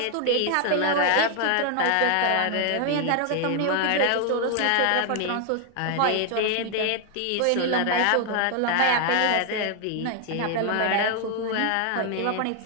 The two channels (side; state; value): both; different; correlation 0.00